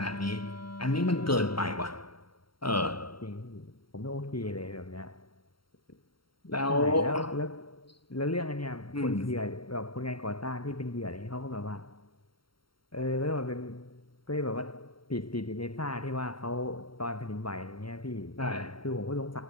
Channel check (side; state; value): right; late; 0.73 ms